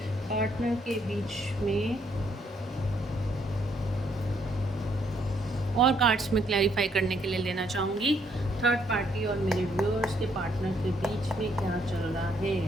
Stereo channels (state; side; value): normal; both; correlation 0.71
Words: पार्टनर के बीच में। और कार्ड्स में क्लैरिफाई करने के लिए लेना चाहूँगी थर्ड पार्टी और मेरे व्यूअर्स के पार्टनर के बीच में क्या चल रहा है।